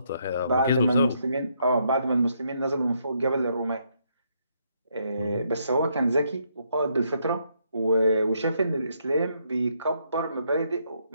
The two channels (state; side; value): inverted; both; correlation -0.74